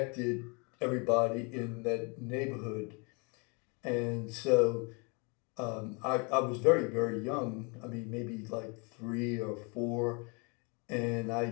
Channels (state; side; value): quieter; right; 32.2 dB